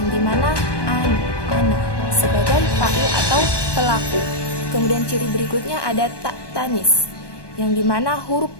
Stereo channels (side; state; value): right; late; 1.2 ms